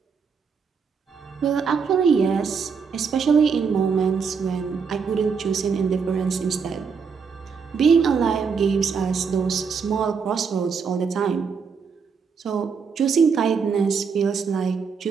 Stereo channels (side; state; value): left; quieter; 5.8 dB